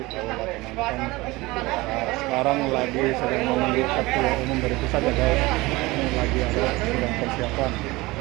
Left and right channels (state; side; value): quieter; left; 21.5 dB